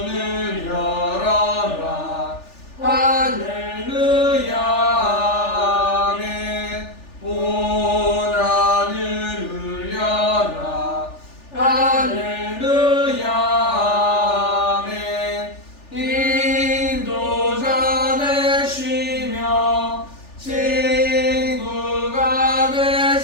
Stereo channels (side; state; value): right; late; 3.4 ms